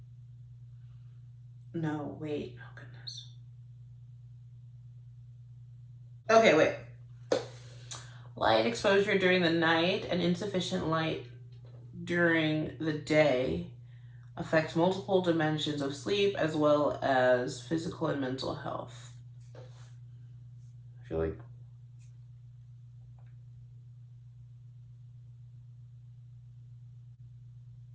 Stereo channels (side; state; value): both; identical; correlation 1.00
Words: No, wait, oh goodness. Okay, wait. Light exposure during the night and insufficient light during the day affects multiple dimensions of sleep as well as physical and mental health. I feel like